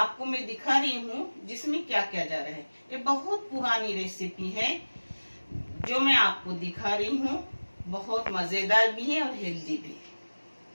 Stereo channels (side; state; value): both; inverted; correlation -1.00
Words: मैं दिखा रही हूँ जिसमें क्या क्या जा रहा है। ये बहुत पुरानी रेसिपी है जो मैं आपको दिखा रही हूँ। बहुत मजेदार भी है और हेल्दी भी।